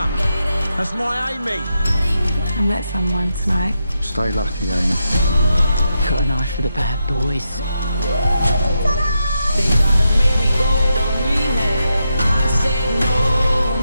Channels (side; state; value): both; inverted; correlation -0.85